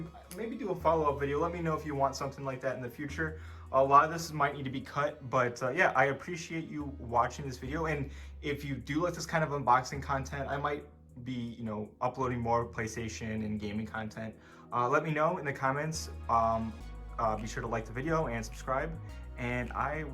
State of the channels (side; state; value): both; identical; correlation 1.00